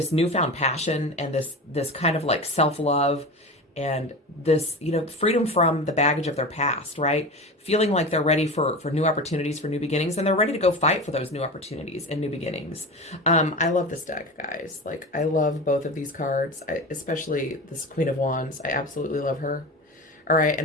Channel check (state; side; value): normal; both; correlation 0.28